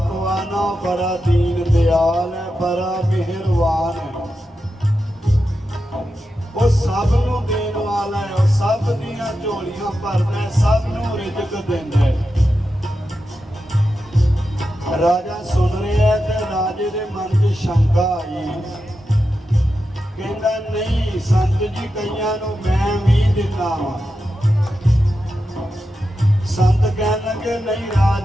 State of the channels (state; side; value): normal; both; correlation 0.89